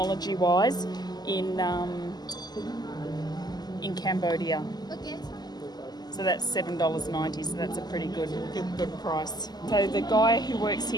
in Cambodia. So that's $7.90, so that's a pretty good price. So the guy who works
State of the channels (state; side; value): late; right; 0.20 ms